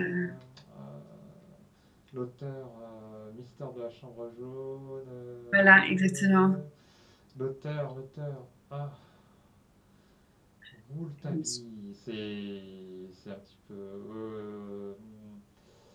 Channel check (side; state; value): both; identical; correlation 1.00